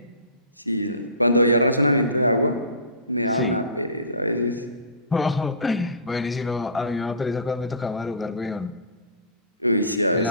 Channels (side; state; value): both; inverted; correlation -0.33